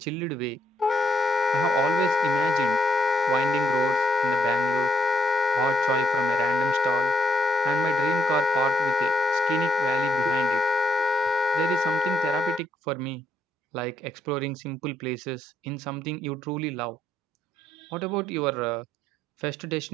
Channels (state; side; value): normal; both; correlation 0.75